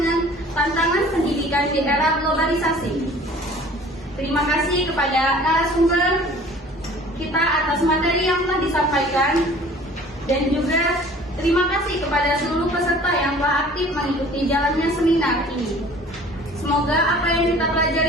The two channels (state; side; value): normal; both; correlation 0.48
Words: tantangan pendidikan di era globalisasi. Terima kasih kepada narasumber kita atas materi yang telah disampaikan, dan juga terima kasih kepada seluruh peserta yang telah aktif mengikuti jalannya seminar ini. Semoga apa yang kita